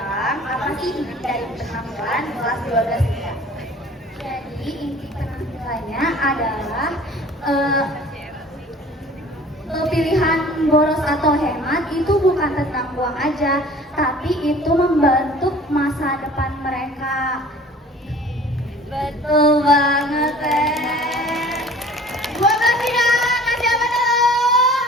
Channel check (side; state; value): both; normal; correlation 0.48